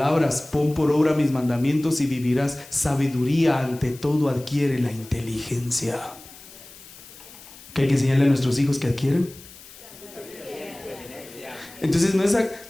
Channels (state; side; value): noise; left; hiss, 20 dB below the sound